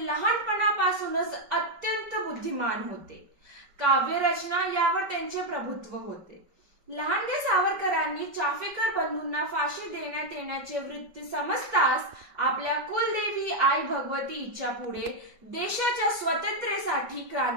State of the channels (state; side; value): late; left; 5.0 ms